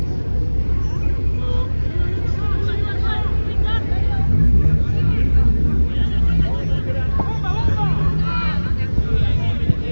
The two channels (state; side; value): inverted; both; correlation -1.00